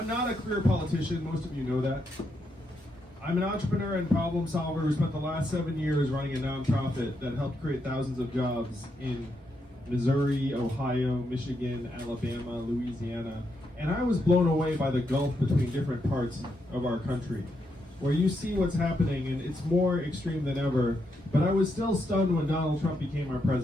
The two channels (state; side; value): normal; both; correlation 0.81